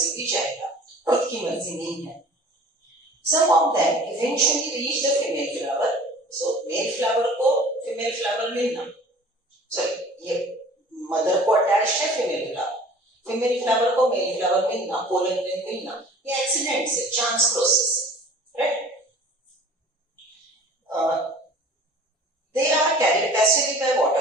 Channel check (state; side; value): normal; both; correlation 0.46